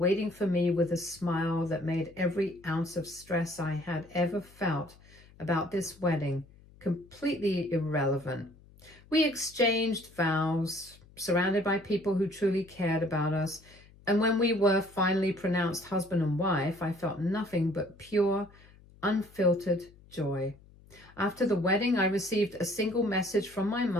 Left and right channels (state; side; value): noise; left; hum, 25 dB below the sound